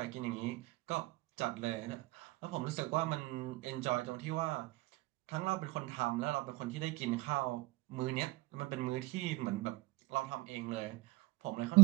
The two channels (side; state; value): left; quieter; 19.8 dB